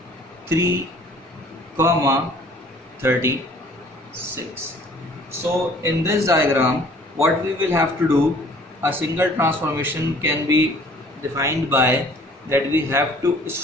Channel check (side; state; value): both; normal; correlation 0.54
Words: 3 comma 36. So in this diagram what we will have to do, a single transformation can be defined by that we have to